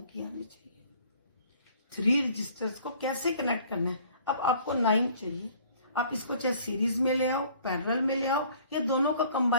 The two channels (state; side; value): inverted; both; correlation -0.55